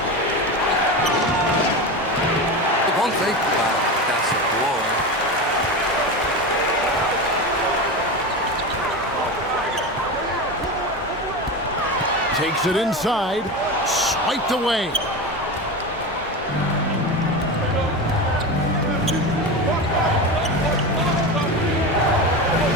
It won't take that's a boy. Takes it inside, swiped away.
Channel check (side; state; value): both; normal; correlation 0.23